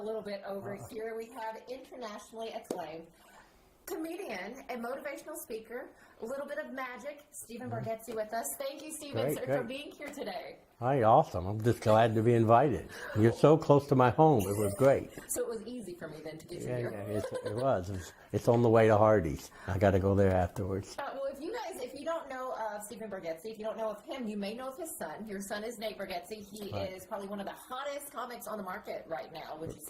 bit over here. We have internationally acclaimed comedian and motivational speaker, a little bit of magic, Stephen Bargetzi with us. Thank you, Stephen, for being here today. Hi, awesome. I'm just glad to be invited. You're so close to my home. It was great. So it was easy for me then to get you here. Yeah, it was. It's on the way to Hardee's. I got to go there afterwards. Well, if you don't know of Stephen Bergetzi. If you don't know of him, you may know of his son. Your son is Nate Bergetzi. He is probably one of the hottest comics on the market right now, would you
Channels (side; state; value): both; identical; correlation 1.00